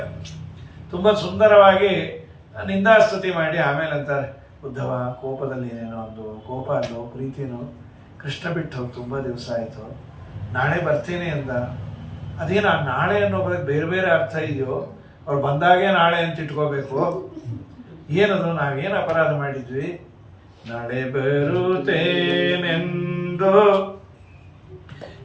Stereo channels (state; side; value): identical; both; correlation 1.00